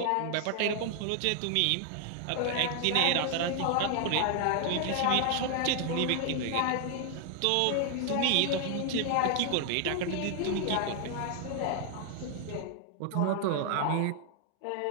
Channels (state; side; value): different; both; correlation 0.00